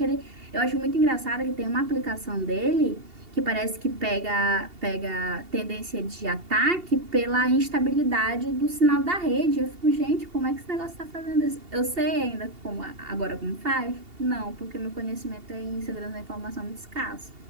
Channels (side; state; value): left; late; 2.8 ms